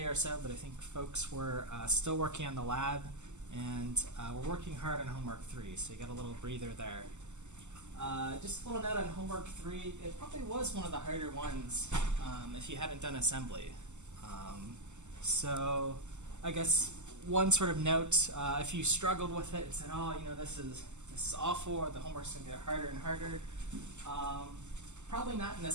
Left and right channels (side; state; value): left; late; 0.83 ms